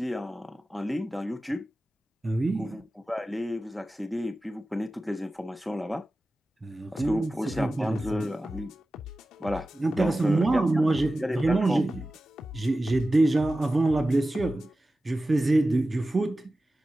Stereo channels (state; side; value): normal; both; correlation 0.95